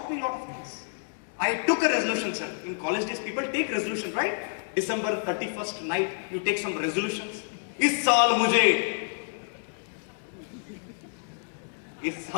me a lot of things. I took a resolution, sir. In college days, people take resolution, right? December 31st night, you take some resolutions. इस साल मुझे,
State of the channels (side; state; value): right; silent; digital silence